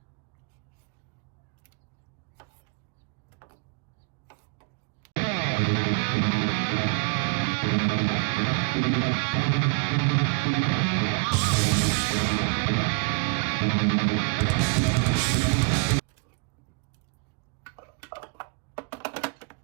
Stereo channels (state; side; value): quieter; left; 32.3 dB